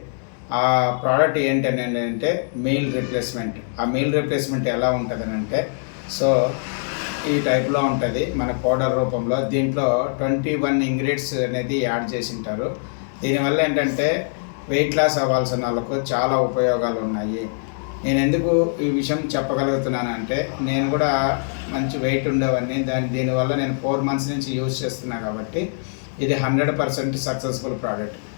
ఆ ప్రోడక్ట్ ఏంటని అంటే మీల్ రీప్లేస్మెంట్. ఆ మీల్ రీప్లేస్మెంట్ ఎలా ఉంటుందని అంటే, సో ఈ టైప్లో ఉంటుంది మన పౌడర్ రూపంలో. దీంట్లో 21 ఇంగ్రీడియంట్స్ అనేది యాడ్ చేసి ఉంటారు. దీనివల్ల ఏంటంటే వెయిట్ లాస్ అవ్వాల్సిన వాళ్ళకు చాలా ఉపయోగాలు ఉన్నాయి. నేను ఎందుకు ఈ విషయం చెప్పగలుగుతున్నానంటే, నేను కూడా మంచి వెయిట్ ఉండేవాడిని. దీనివల్ల నేను 4 months నుంచి యూజ్ చేస్తున్నా కాబట్టి ఇది 100% సక్సెస్ఫుల్ ప్రోడక్ట్.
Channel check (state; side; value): silent; right; digital silence